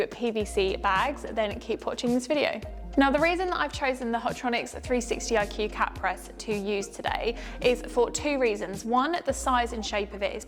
PVC bags, then keep watching this video. Now, the reason that I've chosen the Hotronix 360 IQ cat press to use today is for two reasons. One, the size and shape of it is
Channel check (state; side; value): identical; both; correlation 1.00